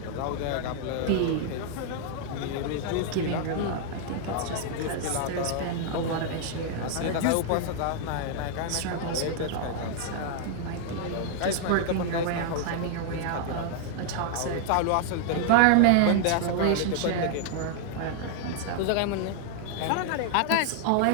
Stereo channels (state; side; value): different; both; correlation 0.00